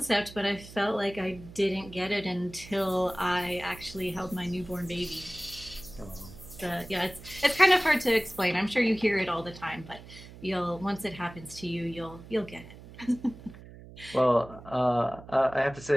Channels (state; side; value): noise; right; hum, 17 dB below the sound